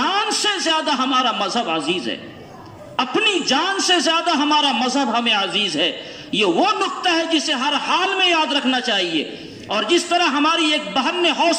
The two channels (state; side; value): identical; both; correlation 1.00